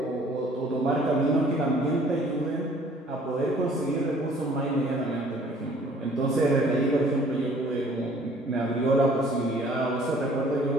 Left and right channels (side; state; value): both; normal; correlation 0.55